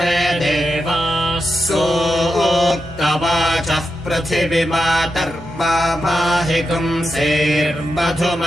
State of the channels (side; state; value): both; normal; correlation 0.87